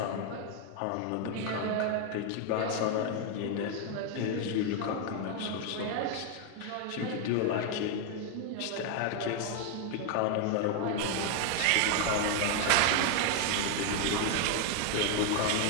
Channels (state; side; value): different; both; correlation 0.01